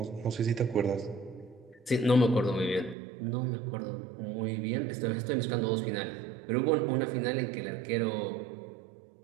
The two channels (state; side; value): drops out; left; at 3.0 s